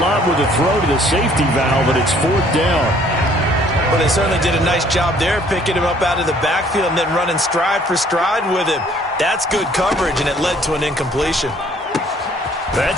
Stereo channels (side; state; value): both; normal; correlation 0.59